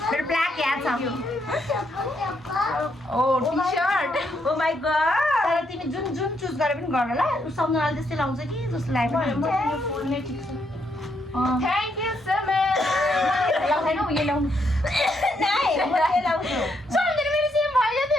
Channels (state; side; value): normal; both; correlation 0.76